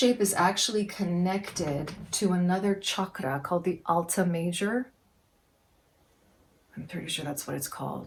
is actually connected to another chakra called the Alta Major. I'm pretty sure that's what it's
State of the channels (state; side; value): identical; both; correlation 1.00